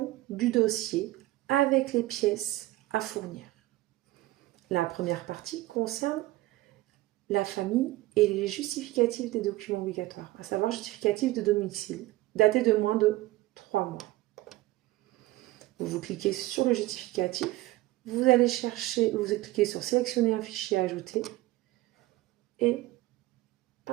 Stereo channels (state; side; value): quieter; left; 17.9 dB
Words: du dossier avec les pièces à fournir. La première partie concerne la famille et les justificatifs des documents obligatoires, à savoir justificatif de domicile, daté de moins de 3 mois. Vous cliquez sur le justificatif, vous allez chercher, vous cliquez sur sélectionner un fichier à ajouter et